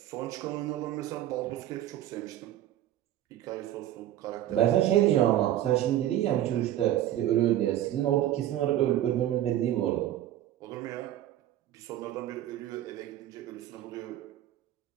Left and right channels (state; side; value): quieter; left; 12.7 dB